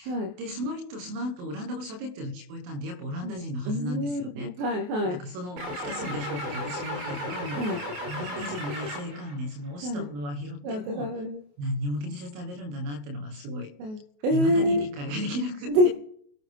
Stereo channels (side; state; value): left; late; 28 ms